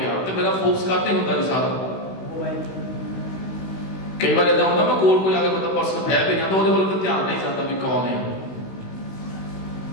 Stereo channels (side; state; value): right; late; 16 ms